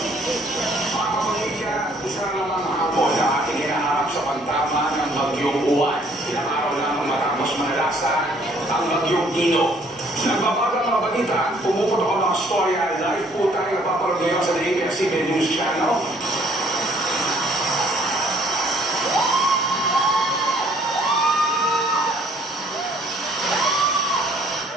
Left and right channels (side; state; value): both; normal; correlation 0.61